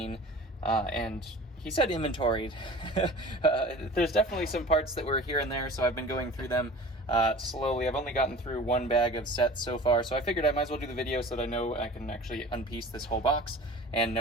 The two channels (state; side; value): normal; both; correlation 0.40